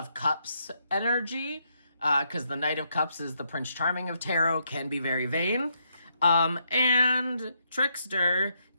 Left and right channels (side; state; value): both; inverted; correlation -0.77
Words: Cups energy, because the Knight of Cups is the Prince Charming of tarot, can be very vain. And trickster,